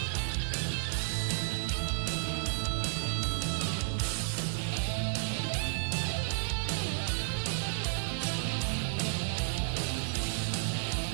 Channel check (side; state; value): left; silent; digital silence